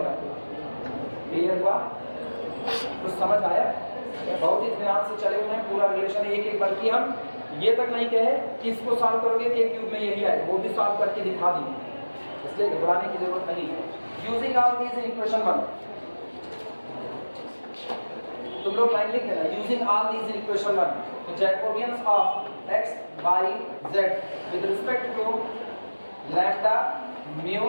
क्लियर हुआ? कुछ समझ आया? बहुत ही ध्यान से चले हुए हैं, पूरा रिलेशन एक बल्कि हम ये तक नहीं कहे कि इसको सॉल्व करोगे कि एक क्यूब में यही आए, वो भी सॉल्व करके दिखा देंगे, इसलिए घबराने की जरूरत नहीं है। यूजिंग ऑल दीज इक्वेशन 1, तुम लोग लाइन लिख देना। Using all these equation 1, Jacobians of x y z with respect to lambda mu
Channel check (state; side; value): inverted; both; correlation -1.00